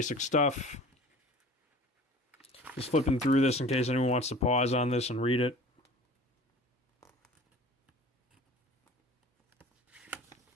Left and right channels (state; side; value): normal; both; correlation 0.42